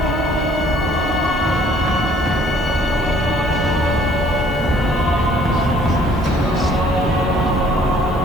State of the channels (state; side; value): normal; both; correlation 0.59